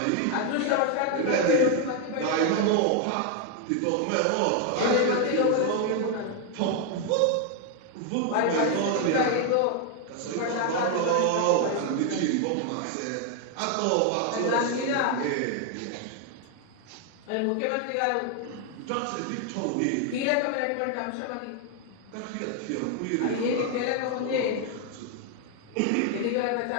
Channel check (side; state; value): both; different; correlation 0.01